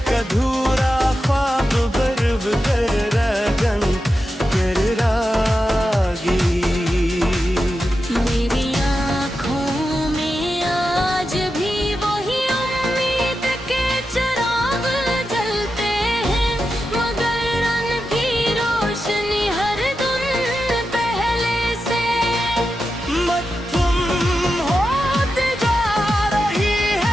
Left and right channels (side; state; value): both; normal; correlation 0.90